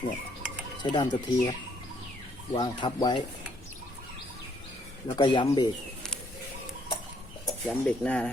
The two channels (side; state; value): both; normal; correlation 0.67